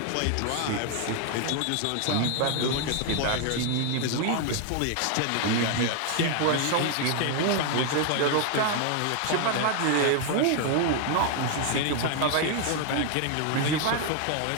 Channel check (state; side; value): different; both; correlation 0.00